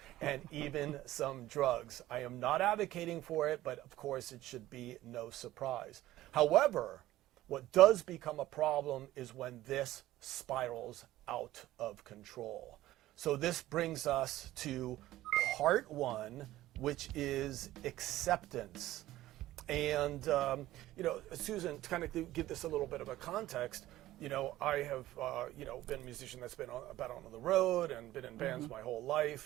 and even some drugs. I am not advocating for it, but of course it should be no surprise. However, what does become a problem is when this spirals out of control. So this brings us to part one, which is acceptance. And, Susan, to kind of give this a little bit of a context, I have, been a musician that's been on the road and been in bands my whole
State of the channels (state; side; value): quieter; left; 15.4 dB